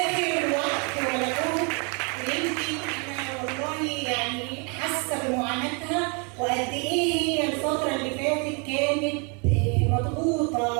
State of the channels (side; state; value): left; quieter; 34.5 dB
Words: وقت ولا جهد، ويمكن أنا والله يعني حاسة بمعاناتها وقد إيه هي الفترة اللي فاتت كانت